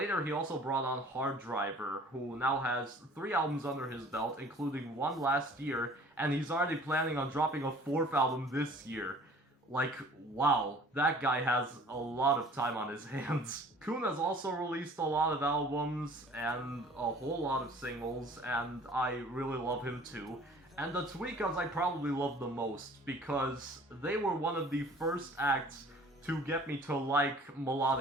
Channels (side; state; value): both; normal; correlation 0.50